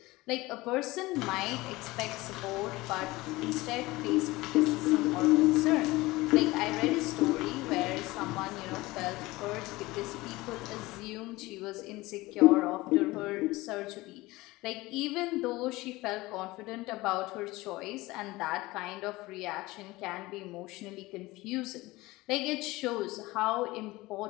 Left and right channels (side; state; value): right; quieter; 20.3 dB